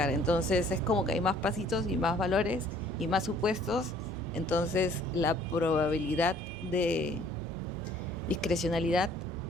Entonces es como que hay más pasitos y más valores y más supuestos. Entonces la probabilidad de discrecionalidad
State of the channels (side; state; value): both; normal; correlation 0.57